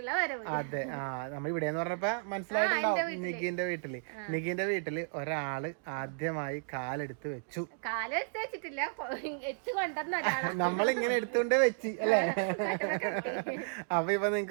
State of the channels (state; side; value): silent; left; digital silence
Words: വരവ്. അതെ. നമ്മൾ ഇവിടെ എന്ന് പറഞ്ഞപ്പോ മനസ്സിലായിട്ടുണ്ടാവും. നിഗിന്റെ വീട്ടില് ഒരാള് ആദ്യമായി കാലെടുത്ത് വെച്ചു. വെച്ചിട്ടില്ല, നമ്മളിങ്ങനെ എടുത്തുകൊണ്ട് വെച്ച് അല്ലേ? അപ്പൊ ഇപ്പൊ